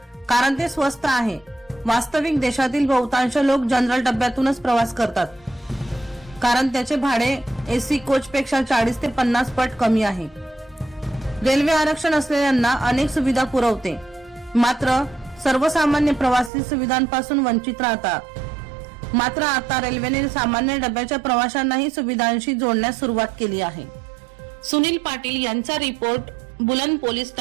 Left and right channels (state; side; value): drops out; left; at 16.5 s